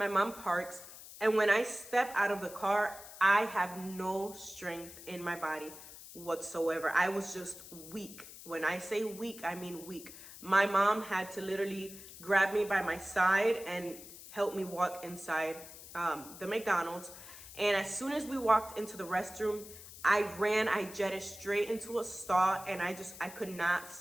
mom parks, and when I step out of the car, I have no strength in my body whatsoever. I was just weak. When I say weak, I mean weak. My mom had to literally grab me by my side and help me walk inside the McDonald's. And as soon as we walked into the restroom, I jetted straight into a stall, and I could not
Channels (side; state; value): left; noise; hiss, 15 dB below the sound